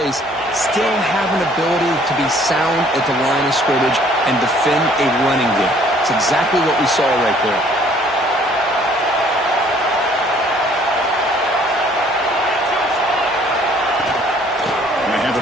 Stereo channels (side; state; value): both; normal; correlation 0.59